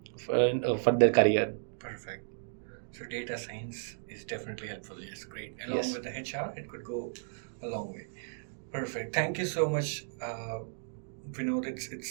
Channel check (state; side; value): silent; left; digital silence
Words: for their career. Perfect. So data science is definitely helpful. Yes, great. Along Yes. with the HR, it could go a long way. Perfect. Thank you so much, Vinod.